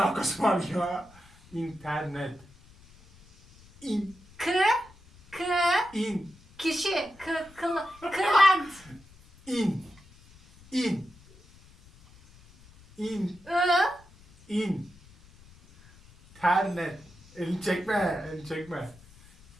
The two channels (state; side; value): noise; left; rumble, 25 dB below the sound